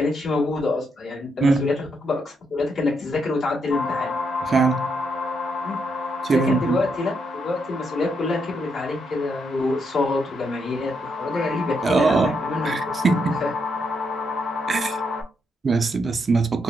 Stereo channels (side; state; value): both; normal; correlation 0.79